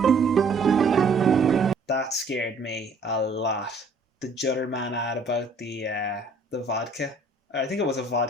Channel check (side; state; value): left; quieter; 3.1 dB